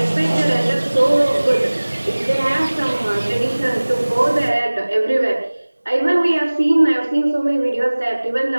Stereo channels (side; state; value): both; inverted; correlation -1.00